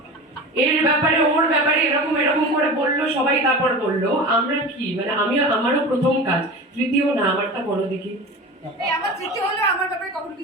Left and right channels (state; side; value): normal; both; correlation 0.31